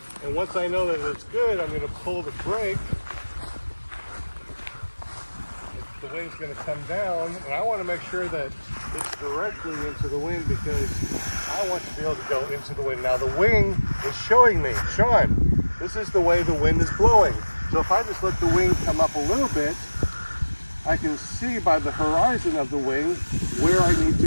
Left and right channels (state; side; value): inverted; both; correlation -1.00